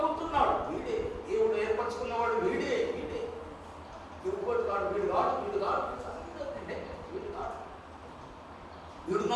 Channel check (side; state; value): both; identical; correlation 1.00